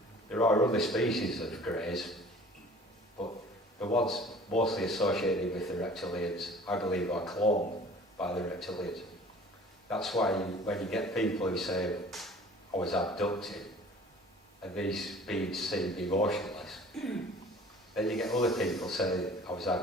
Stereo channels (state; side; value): normal; both; correlation 0.48